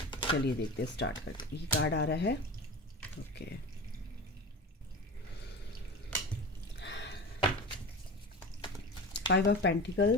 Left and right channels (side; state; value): both; normal; correlation 0.31